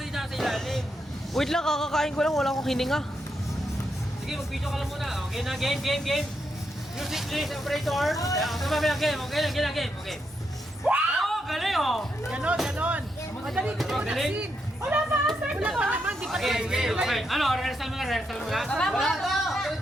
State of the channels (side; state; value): both; normal; correlation 0.82